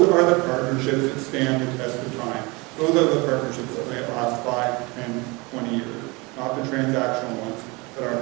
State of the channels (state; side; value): quieter; left; 25.7 dB